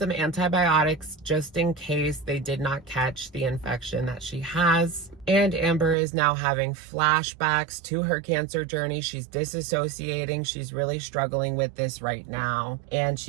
antibiotics just in case they did not catch the infection that she has. And Amber is now having flashbacks to her cancer journey. She's disassociating. She's really struggling with this right now. And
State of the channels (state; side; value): drops out; left; at 6.0 s